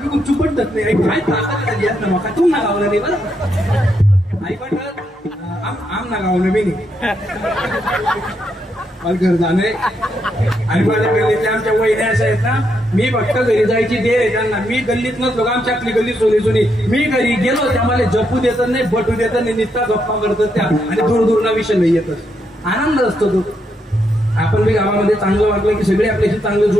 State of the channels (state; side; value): normal; both; correlation 0.79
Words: खूप चुपट जात नाही. काय ताकद झाली ना मग तू ना गावलं नाही बरं. आई पण आम ना गावलं मी घर जाणे. आणि माझ्या गल्लीतल्या आमच्या वहिन्या अशा आहेत ना. मी फक्त घरी जायची देर आहे त्यांना. मी गल्लीत नसलो का आमच्या आपली गल्ली सोनी मी घरी गेलो त्या मला जपू देत नाही बटू देत नाही. निस्ता गप्पा करतात त्या आणि दूर विषय नाही येतच. आनंद असतो तो. आपण बी गावामध्ये चांगलं वाटलं की सगळे आपल्याशी चांगलं